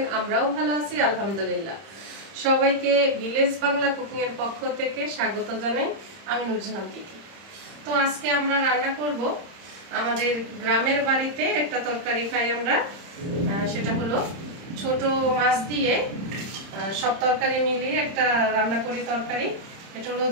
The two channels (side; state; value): left; late; 31 ms